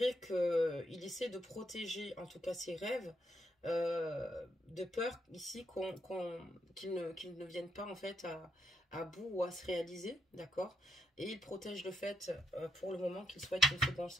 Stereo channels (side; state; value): both; normal; correlation 0.79